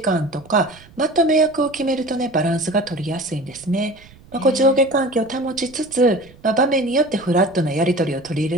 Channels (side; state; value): right; noise; rumble, 24 dB below the sound